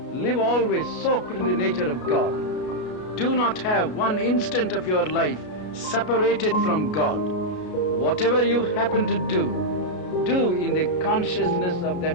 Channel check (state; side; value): late; right; 33 ms